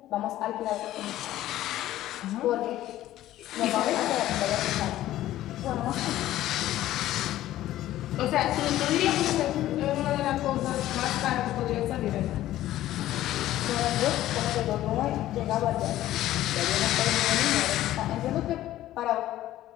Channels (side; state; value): right; quieter; 14.1 dB